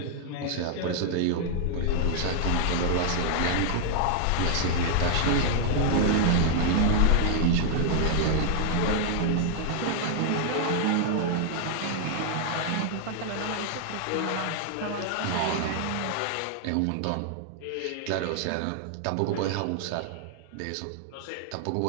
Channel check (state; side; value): different; both; correlation 0.00